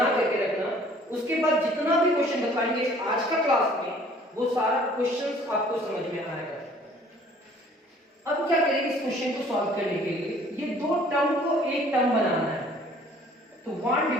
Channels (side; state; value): both; normal; correlation 0.55